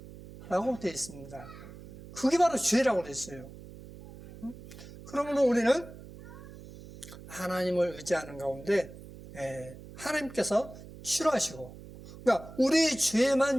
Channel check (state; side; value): noise; right; hum, 16 dB below the sound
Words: 라고 되어 있습니다. 그게 바로 죄라고 되어 있어요. 그러므로 우리는 하나님을 의지하는 가운데 하나님께서 치료하시고, 그러니까 우리의